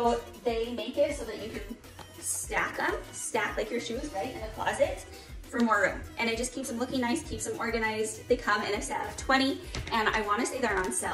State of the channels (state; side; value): identical; both; correlation 1.00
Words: they make it so that you can stack like your shoes, right, in the closet for more room. And it just keeps them looking nice, keeps them organized. They come in a set of 20, and I wanna say they're on